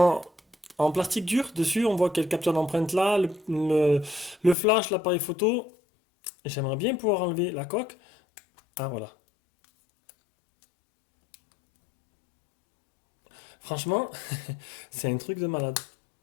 plastique dur dessus, on voit quelle capture d'empreinte là, le flash, l'appareil photo. J'aimerais bien pouvoir enlever la coque. Ah voilà. Franchement, c'est un truc de malade.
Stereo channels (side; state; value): right; drops out; at 4.5 s